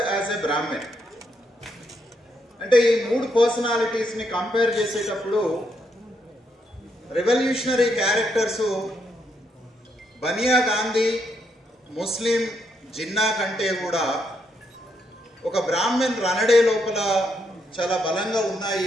as a Brahmin. అంటే ఈ మూడు పర్సనాలిటీస్ని కంపేర్ చేసేటప్పుడు revolutionary characters Bania Gandhi, Muslim Jinnah కంటే కూడా ఒక బ్రాహ్మణ్ రనడే లోపల చాలా బలంగా ఉన్నాయి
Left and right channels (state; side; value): normal; both; correlation 0.78